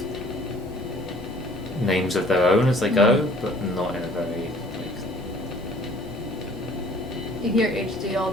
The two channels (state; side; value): normal; both; correlation 0.54